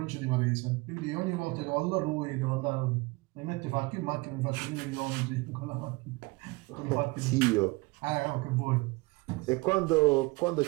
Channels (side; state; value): left; quieter; 24.8 dB